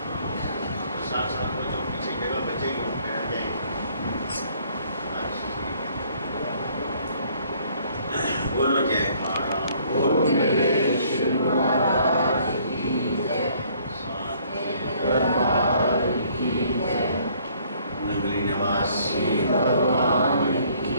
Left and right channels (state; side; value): inverted; both; correlation -0.61